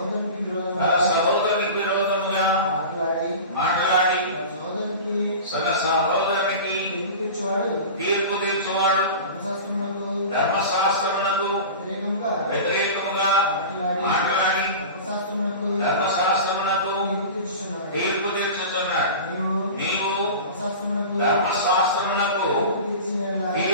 సహోదరునికి విరోధముగా మాట్లాడి తన సహోదరునికి తీర్పు తీర్చువాడు ధర్మశాస్త్రమునకు వ్యతిరేకముగా మాట్లాడి ధర్మశాస్త్రమునకు తీర్పు తీర్చుతున్నాడు. నీవు ధర్మశాస్త్రమునకు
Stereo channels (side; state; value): both; inverted; correlation -0.33